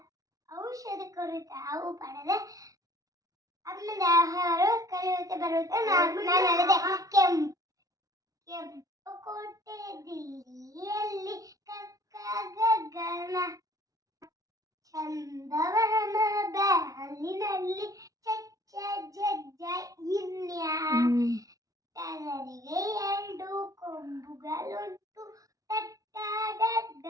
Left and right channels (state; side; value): late; left; 0.17 ms